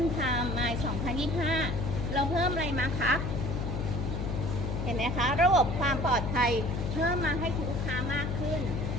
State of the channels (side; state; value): left; noise; hum, 2 dB below the sound